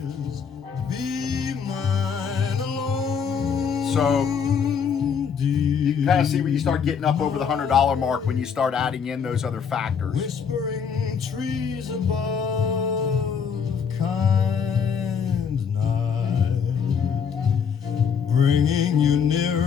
So you can kind of see where you start getting up over the $100 mark when you start adding in those other factors. Whispering trees above, kind night, bringing you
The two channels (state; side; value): quieter; right; 6.8 dB